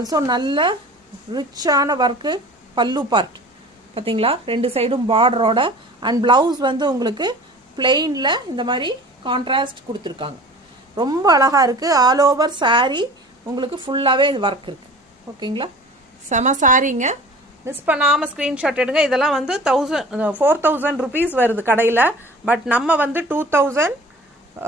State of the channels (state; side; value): normal; both; correlation 0.42